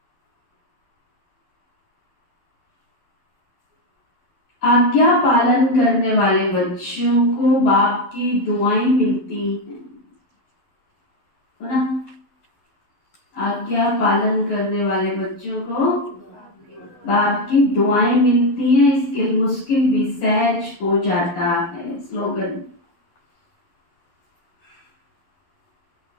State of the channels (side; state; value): right; late; 11 ms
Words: आज्ञा पालन करने वाले बच्चों को बाप की दुआएं मिलती हैं, है ना? आज्ञा पालन करने वाले बच्चों को बाप की दुआएं मिलती हैं, इसके मुश्किल भी सहज हो जाता है। स्लोगन,